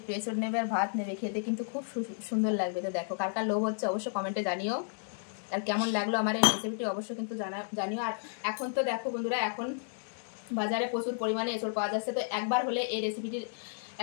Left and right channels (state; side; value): silent; right; digital silence